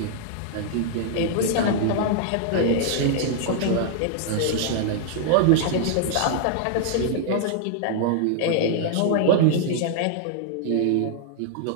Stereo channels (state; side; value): different; both; correlation -0.01